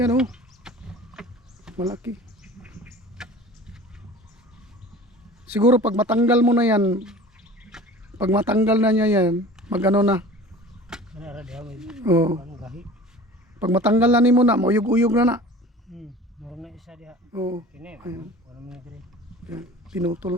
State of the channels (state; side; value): normal; both; correlation 0.41